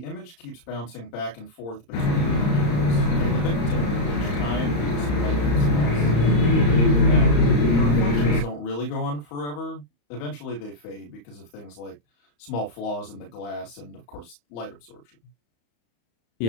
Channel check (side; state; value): right; late; 34 ms